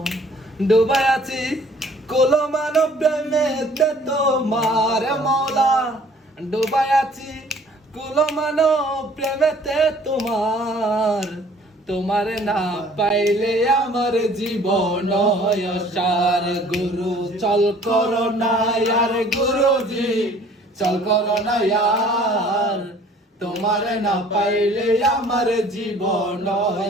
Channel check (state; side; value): normal; both; correlation 0.54